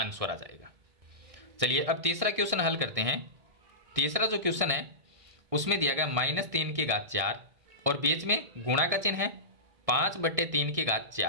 आ जाएगा। चलिए अब तीसरा क्वेश्चन हल करते हैं। तीसरा जो क्वेश्चन है उसमें दिया गया -3 की घात 4 और बीच में गुणा का चिन्ह है 5/3 की घात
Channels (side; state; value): left; late; 1.6 ms